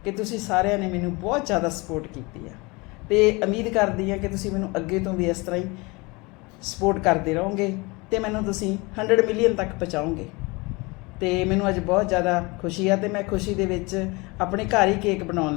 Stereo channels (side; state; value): right; quieter; 25.7 dB